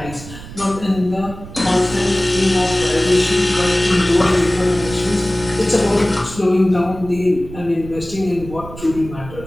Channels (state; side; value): noise; right; rumble, 14 dB below the sound